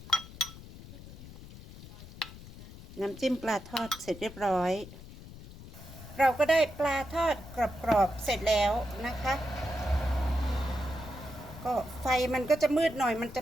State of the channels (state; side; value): noise; left; rumble, 16 dB below the sound